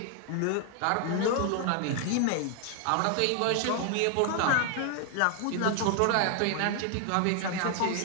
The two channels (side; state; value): both; different; correlation 0.01